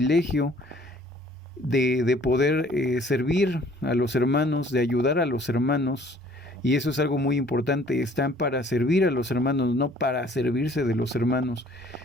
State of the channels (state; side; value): normal; both; correlation 0.56